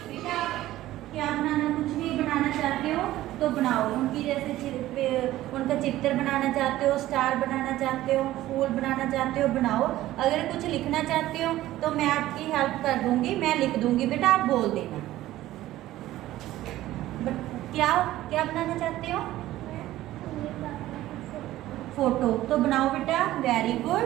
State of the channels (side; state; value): left; quieter; 15.1 dB